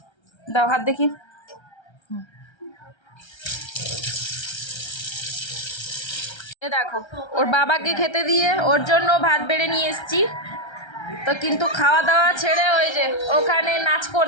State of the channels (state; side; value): late; right; 1.3 ms